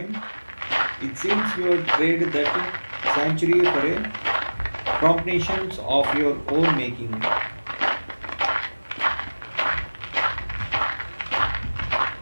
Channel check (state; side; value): inverted; both; correlation -1.00